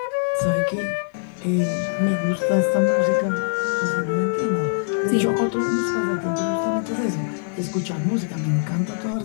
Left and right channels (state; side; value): silent; right; digital silence